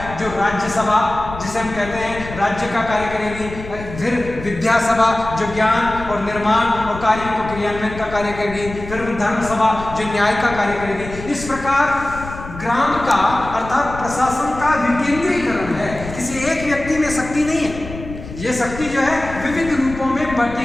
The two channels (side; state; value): left; noise; rumble, 12 dB below the sound